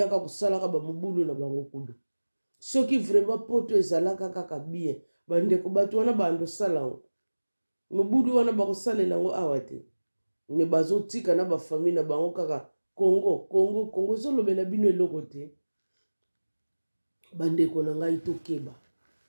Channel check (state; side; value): inverted; both; correlation -1.00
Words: kosalaka bamobulu na bango kudu soki vraiment poto ezalaka kaka bien bandeko bato wana bandosala yango mobudu wana bakosalela yango awa te me bazotika na bafamille na bango kaka Congo ezolobela bino eloko te. Bandeko na ngai